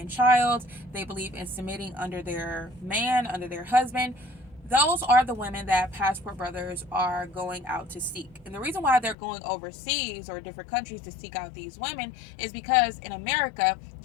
child, they believe in submitting under their man, under their husband. Those are the women that Passport Brothers are going out to seek. And the reason why they're going overseas or different countries to seek out these women is because in America,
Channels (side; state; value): right; drops out; at 9.2 s